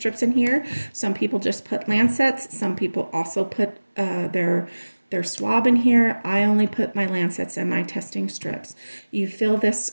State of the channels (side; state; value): both; inverted; correlation -1.00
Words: in here. Some people just put lancets. Some people also put their swab in here. I only put my lancets and my testing strips. You fill this